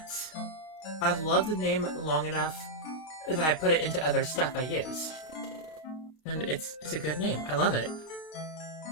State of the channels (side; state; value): right; late; 32 ms